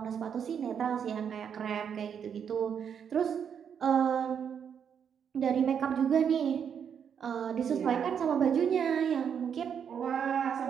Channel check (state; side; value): quieter; left; 7.7 dB